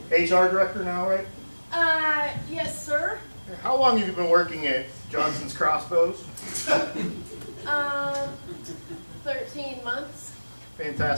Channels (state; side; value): inverted; both; correlation -1.00